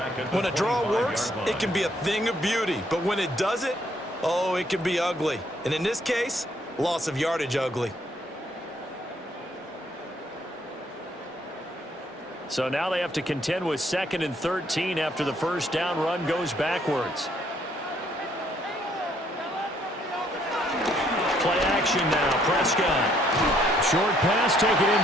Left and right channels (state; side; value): normal; both; correlation 0.67